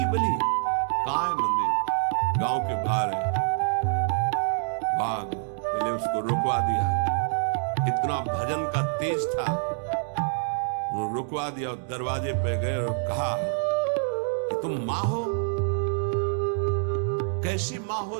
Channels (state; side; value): silent; left; digital silence